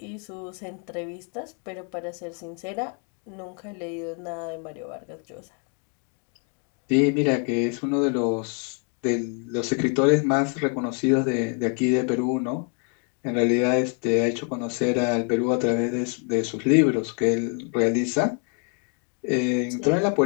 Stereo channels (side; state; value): right; quieter; 40.0 dB